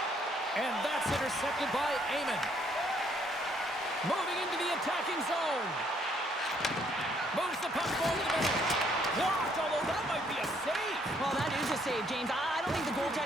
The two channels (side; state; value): both; normal; correlation 0.67